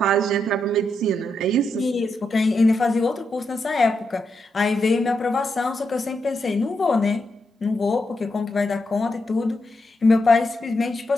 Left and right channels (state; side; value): normal; both; correlation 0.83